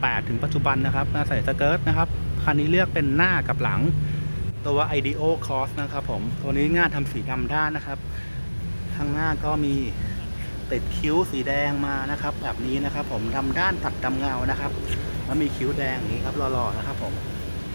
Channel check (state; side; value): inverted; both; correlation -1.00